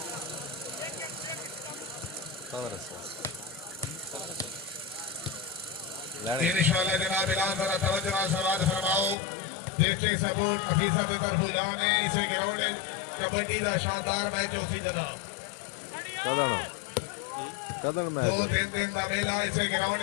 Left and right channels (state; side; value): drops out; right; at 9.2 s